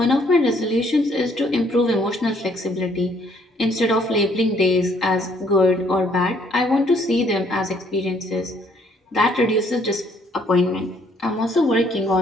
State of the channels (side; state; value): both; normal; correlation 0.65